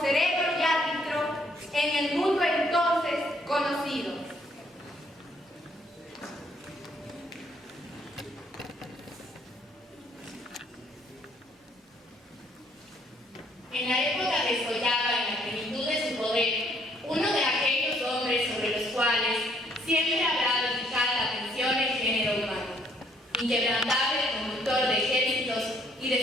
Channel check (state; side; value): normal; both; correlation 0.66